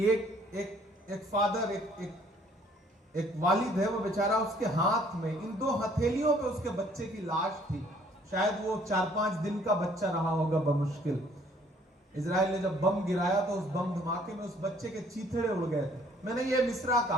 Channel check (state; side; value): normal; both; correlation 0.60